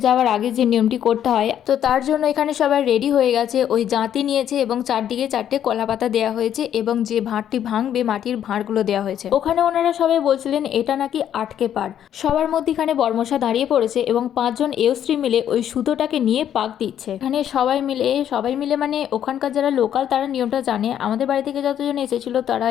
যাওয়ার আগে যে নিয়মটি করতে হয়, তো তার জন্য এখানে সবাই রেডি হয়ে গেছে। ওই জাঁতি নিয়েছে এবং চারদিকে 4টে কলা পাতা দেওয়া হয়েছে এবং যে ভাঁড়টি ভাঙবে মাটির ভাঁড়গুলো দেওয়া হয়েছে। ওখানে ওনারা সবাই বলছিলেন এটা নাকি আটকে পার। সবার মধ্যেখানে বরমশা দাঁড়িয়ে পড়েছে এবং 5 জন এয়স্ত্রী মিলে ওই সুতোটাকে নিয়ে পাক দিচ্ছে। এখানে সবাই মিলে মানে ওখানকার যারা লোকাল তারা নিয়মটা জানে। আমাদের বাড়ি থেকে যতজন এসেছিল তারা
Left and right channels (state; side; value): quieter; right; 10.1 dB